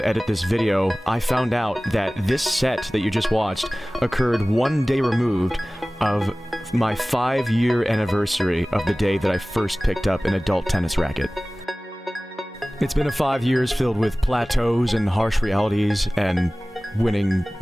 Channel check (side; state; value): both; normal; correlation 0.98